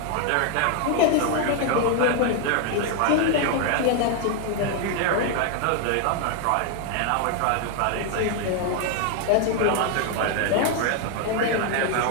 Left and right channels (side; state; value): both; different; correlation 0.01